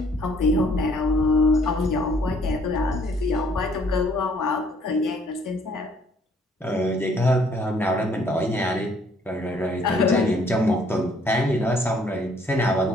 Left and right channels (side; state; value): both; normal; correlation 0.63